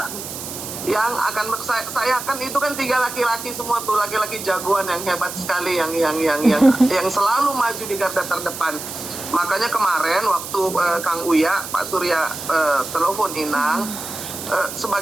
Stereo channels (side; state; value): right; noise; hiss, 9 dB below the sound